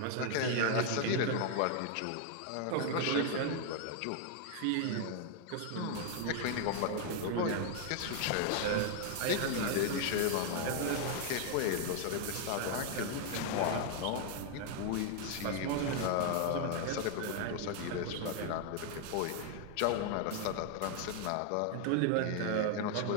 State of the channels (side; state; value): both; different; correlation 0.00